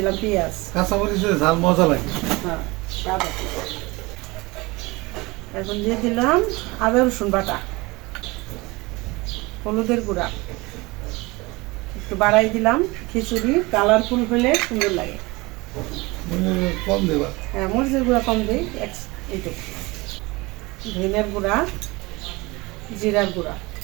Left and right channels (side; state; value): left; quieter; 23.3 dB